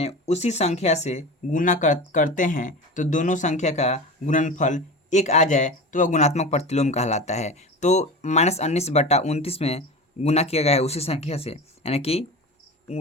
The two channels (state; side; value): normal; both; correlation 0.30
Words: उसी संख्या से गुना करते हैं तो दोनों संख्या का गुणनफल 1 आ जाए तो वह गुणात्मक प्रतिलोम कहलाता है। तो -19/29 में गुना किया गया है उसी संख्या से, यानी कि